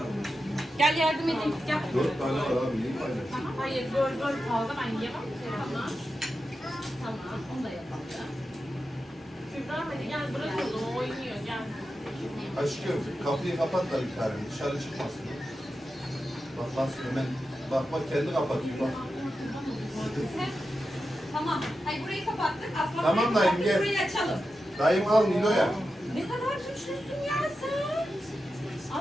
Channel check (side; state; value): both; normal; correlation 0.90